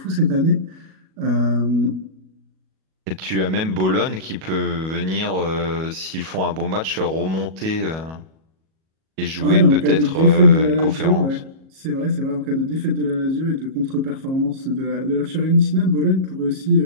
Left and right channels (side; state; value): left; late; 37 ms